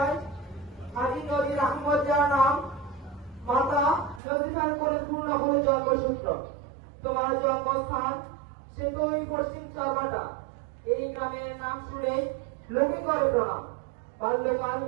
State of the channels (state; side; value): drops out; left; at 4.2 s